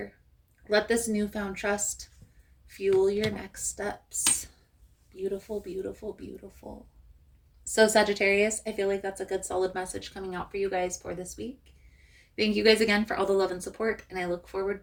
Let this newfound trust fuel your next steps. Beautiful, beautiful, beautiful. So Sagittarius, I feel like that's a good solid message coming out for you guys for this week. Thank you guys again for all the love and support, and I look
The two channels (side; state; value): both; identical; correlation 1.00